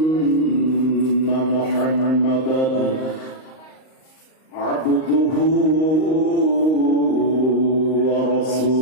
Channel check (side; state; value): right; late; 38 ms